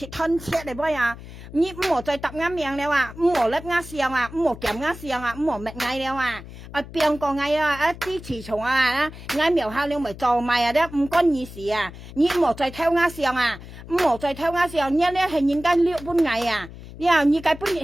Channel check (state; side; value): noise; left; hum, 15 dB below the sound